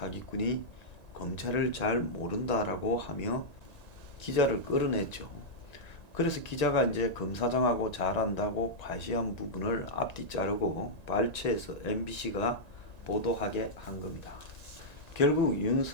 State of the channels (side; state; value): right; late; 1.9 ms